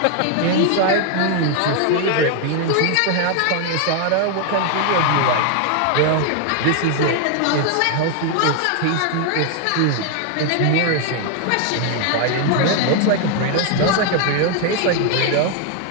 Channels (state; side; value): different; both; correlation 0.00